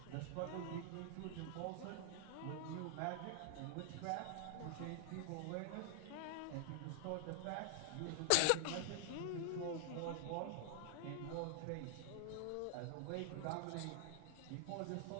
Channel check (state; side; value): different; both; correlation 0.00